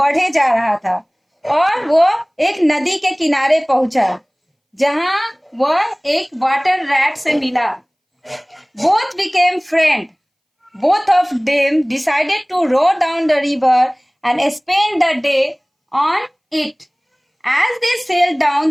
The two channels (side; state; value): both; identical; correlation 1.00